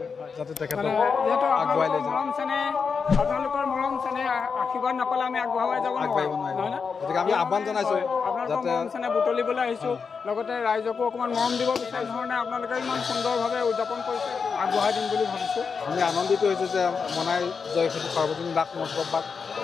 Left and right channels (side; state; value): right; quieter; 5.6 dB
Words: যাতে তেখেতক আগুৱাই লৈ যায় আপোনালোকৰ মৰম চেনেহ আশীৰ্বাদ নাপালে আমি আগবঢ়াই যাব নোৱাৰিম গতিকে আমি আহ্বান জনাইছোঁ যাতে মৰম চেনেহ বুটলিবলৈ আহিছোঁ লগতে ৰাইজকো অকণমান মৰম দিব বিচাৰি ধৰণে আপোনালোকে ইমান সুন্দৰভাৱে উদযাপন কৰিছে আগবঢ়াই দিম বুলি ভাবিছোঁ আমি আনন্দিত হৈছোঁ যে মনাই জয়খিনিক সাৰ্বজনীন ৰাস মহোৎসৱ ভাগ